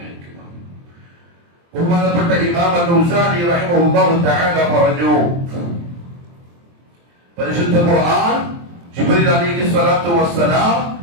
ഹിക്മ. ബഹുമാനപ്പെട്ട ഇമാം അൽ-ഔസാഇ റഹിമഹുല്ലാഹു തആല പറഞ്ഞു, പരിശുദ്ധ ഖുർആൻ ജിബ്രീൽ അലൈഹി സ്വലാത്തു വസ്സലാം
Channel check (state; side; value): late; left; 23 ms